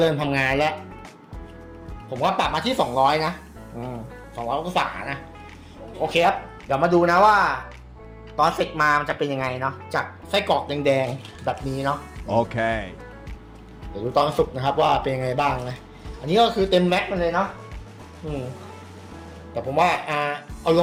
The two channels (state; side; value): identical; both; correlation 1.00